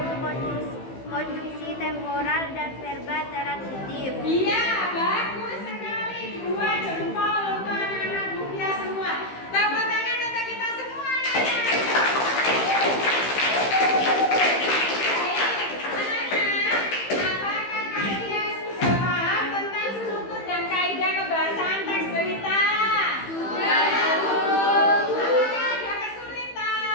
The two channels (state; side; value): late; right; 15 ms